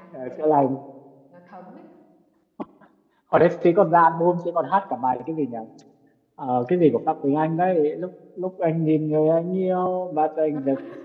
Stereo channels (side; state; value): both; identical; correlation 1.00